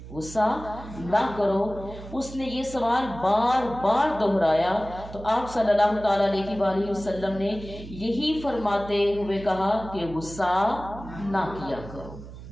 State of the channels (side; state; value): right; noise; hum, 14 dB below the sound